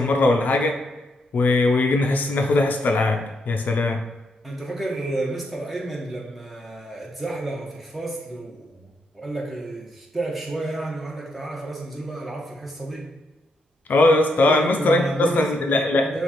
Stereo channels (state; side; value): normal; both; correlation 0.78